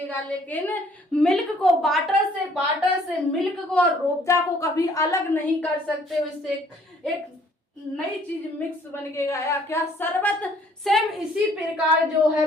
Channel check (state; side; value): normal; both; correlation 0.60